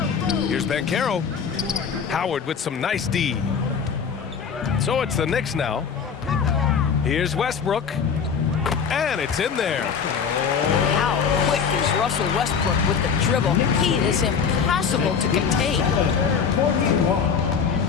Here's Banchero. Howard with some nice D. So it's the Knicks now. Here's Westbrook. And it's in there. How quick is Russell Westbrook with the dribble? He is impossible to contain.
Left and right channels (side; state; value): right; quieter; 6.5 dB